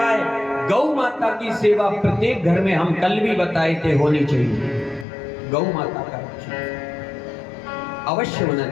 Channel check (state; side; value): drops out; right; at 5.1 s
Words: गौ माता की सेवा प्रत्येक घर में, हम कल भी बताए थे, होनी चाहिए। गौ माता का अवश्य होना